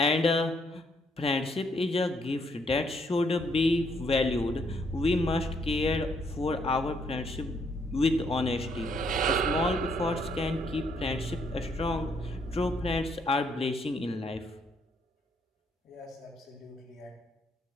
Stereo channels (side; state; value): both; normal; correlation 0.71